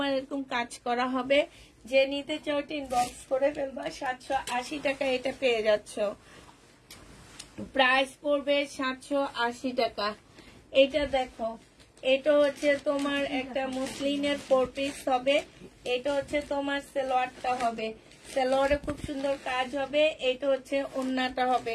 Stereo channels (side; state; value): both; identical; correlation 1.00